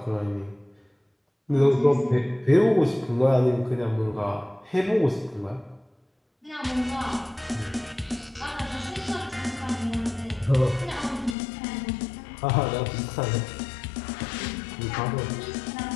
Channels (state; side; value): drops out; right; at 11.4 s